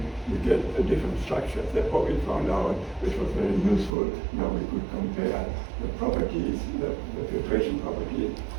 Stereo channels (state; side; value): drops out; left; at 3.9 s